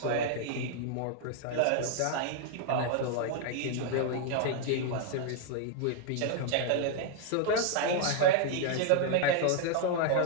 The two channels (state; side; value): different; both; correlation 0.00